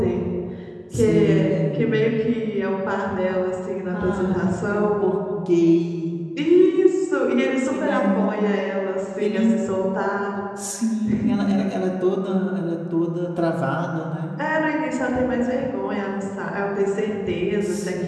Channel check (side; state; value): both; identical; correlation 1.00